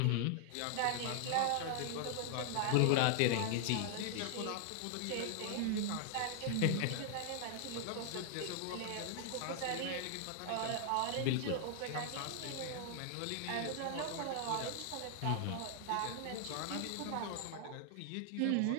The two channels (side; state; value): both; different; correlation 0.00